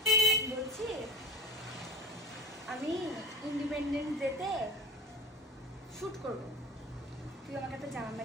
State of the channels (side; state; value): both; normal; correlation 0.31